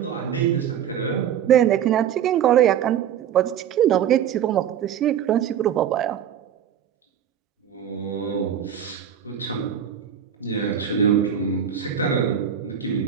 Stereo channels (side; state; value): left; quieter; 9.1 dB